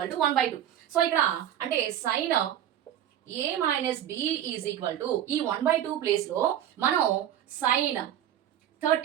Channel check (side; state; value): left; quieter; 10.9 dB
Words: to 1/2. So ఇక్కడ అంటే sine a minus B is equal to ఈ 1/2 ప్లేస్ లో మనం సైన్